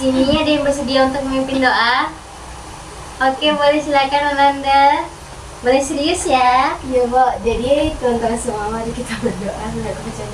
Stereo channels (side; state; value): both; identical; correlation 1.00